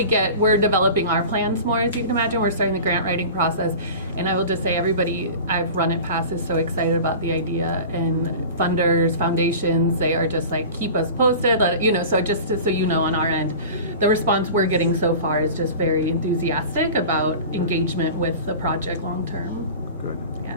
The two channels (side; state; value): both; inverted; correlation -0.36